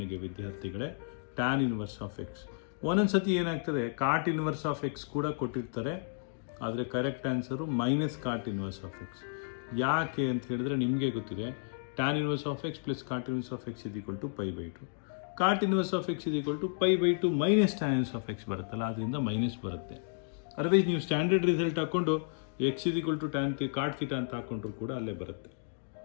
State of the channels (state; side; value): silent; right; digital silence